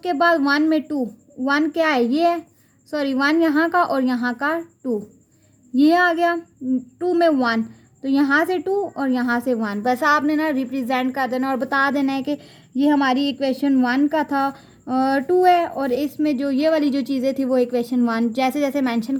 बाद 1 में 2, 1 क्या है, ये है, सॉरी 1 यहाँ का और यहाँ का 2, ये आ गया। 2 में 1, तो यहाँ से 2 और यहाँ से 1, बस आपने ना रिप्रेजेंट कर देना और बता देना है कि ये हमारी इक्वेशन 1 का था, 2 है, और इसमें जो ये वाली जो चीज़ें थी वो इक्वेशन 1। जैसे जैसे मेंशन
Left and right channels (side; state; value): both; identical; correlation 1.00